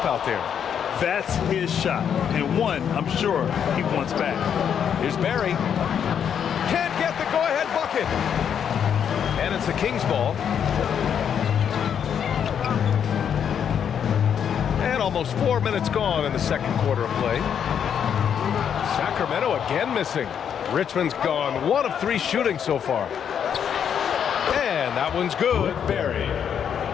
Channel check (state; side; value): quieter; right; 8.2 dB